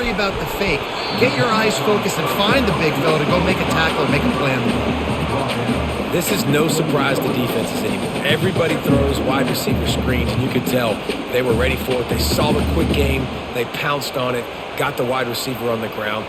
about the fake. Get your eyes focused and find the big fella to go make a tackle or make a play on the ball. This is no surprise to defenses anymore. Everybody throws wide receiver screens, and you could tell they were ready for it. They saw the quick game. They pounced on it, got the wide receiver on the ground.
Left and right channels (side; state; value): both; identical; correlation 1.00